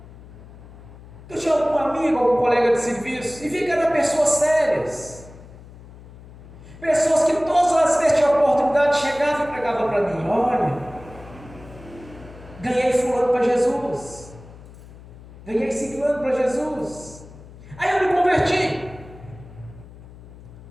eu tinha algum amigo, algum colega de serviço, e vi que eram pessoas sérias, pessoas que todas as vezes tinham oportunidade, chegavam e pregavam para mim: olha, ganhei fulano para Jesus, ganhei ciclano para Jesus. Aí eu me converti,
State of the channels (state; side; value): noise; left; hum, 19 dB below the sound